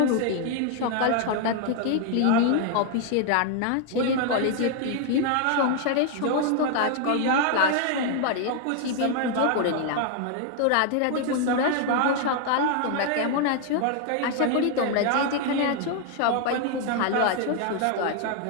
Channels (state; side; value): different; both; correlation 0.00